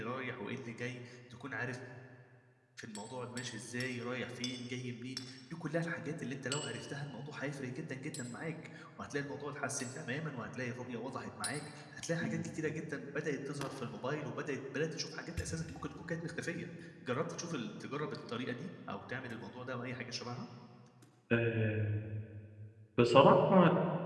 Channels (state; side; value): identical; both; correlation 1.00